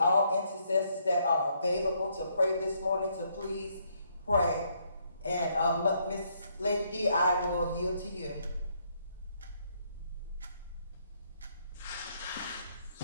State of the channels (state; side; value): inverted; both; correlation -0.72